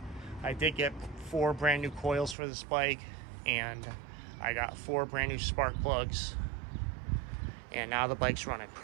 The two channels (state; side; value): drops out; left; at 2.4 s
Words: I did get 4 brand new coils for this bike, and I got 4 brand new spark plugs, and now the bike's running